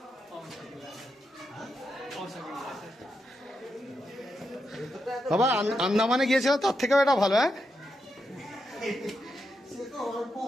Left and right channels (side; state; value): both; normal; correlation 0.85